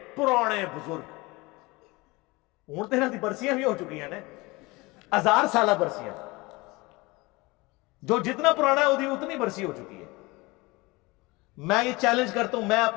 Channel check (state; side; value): quieter; right; 23.4 dB